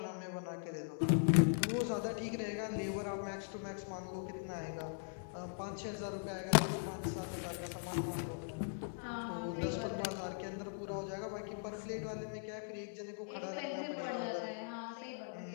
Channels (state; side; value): silent; right; digital silence